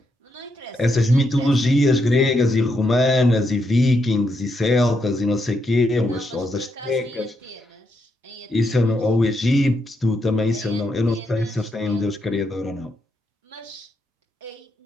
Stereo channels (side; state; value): both; normal; correlation 0.80